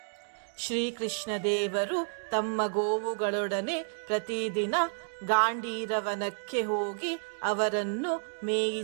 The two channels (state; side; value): silent; left; digital silence